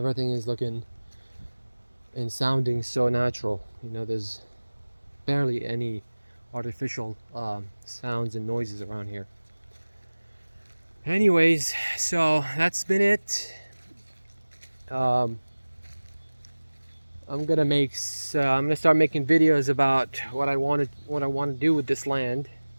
is looking and sounding so natural, you know. There's barely any artificial sounds and noises around here. Anyways, so that's been it. I'm gonna start making videos about what I want to do with this land,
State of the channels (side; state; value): both; inverted; correlation -1.00